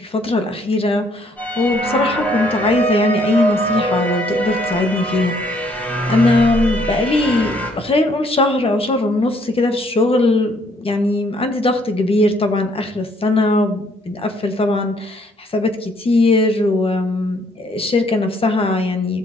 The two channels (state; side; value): normal; both; correlation 0.66